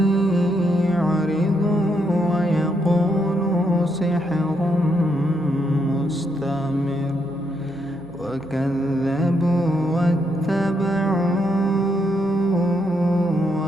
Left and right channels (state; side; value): noise; right; hum, 24 dB below the sound